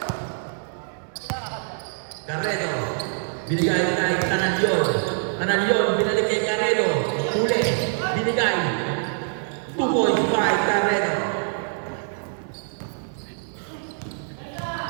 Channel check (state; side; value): silent; left; digital silence